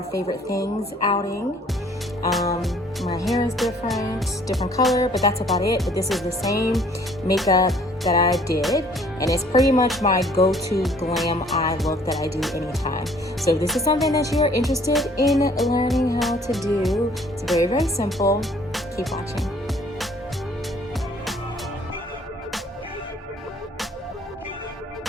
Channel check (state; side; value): normal; both; correlation 0.57